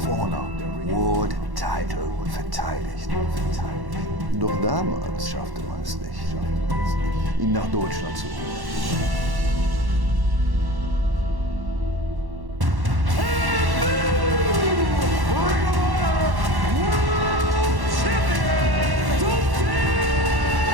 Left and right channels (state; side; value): late; left; 1.1 ms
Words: Honor World Title verteidigt. Doch damals schaffte man es nicht, ihn nach Deutschland zu holen.